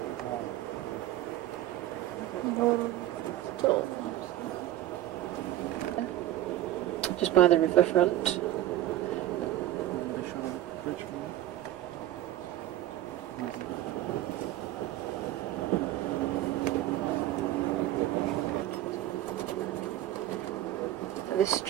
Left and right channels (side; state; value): left; quieter; 13.8 dB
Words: Just by the riverfront. This